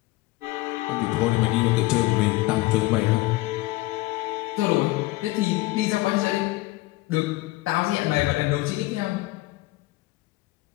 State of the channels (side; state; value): right; quieter; 19.7 dB